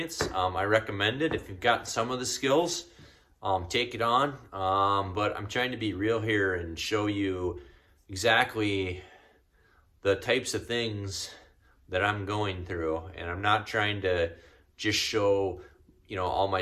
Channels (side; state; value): both; identical; correlation 1.00